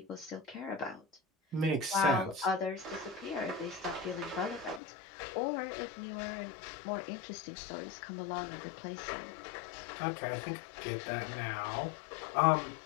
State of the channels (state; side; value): drops out; right; at 4.8 s